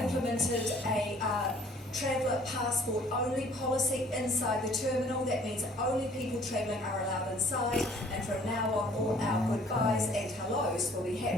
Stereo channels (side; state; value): both; normal; correlation 0.55